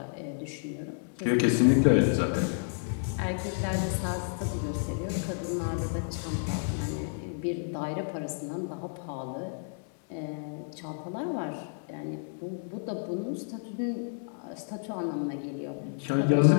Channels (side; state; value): right; silent; digital silence